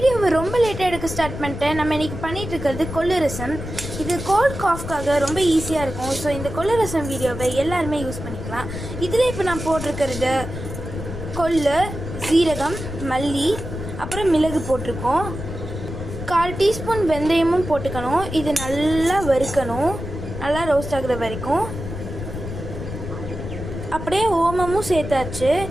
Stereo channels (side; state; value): left; noise; rumble, 8 dB below the sound